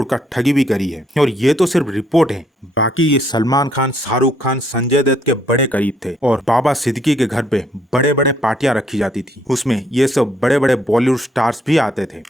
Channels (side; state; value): both; normal; correlation 0.69